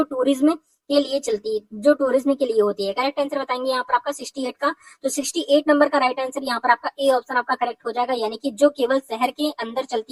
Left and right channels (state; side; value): identical; both; correlation 1.00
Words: टूरिज्म के लिए चलती है, जो टूरिज्म के लिए होती है। करेक्ट आंसर बताएंगे यहाँ पर आपका 68 का। तो 68 नंबर का राइट आंसर यहाँ पर आपका ए ऑप्शन आपका करेक्ट हो जाएगा, यानी कि जो केवल शहर के अंदर